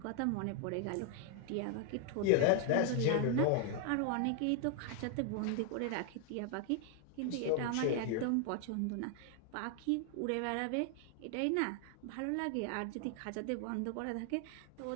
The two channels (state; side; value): different; both; correlation 0.00